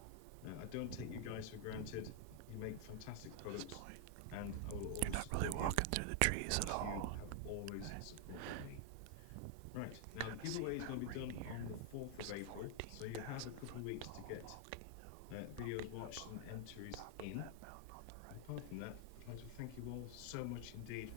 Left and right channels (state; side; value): different; both; correlation 0.00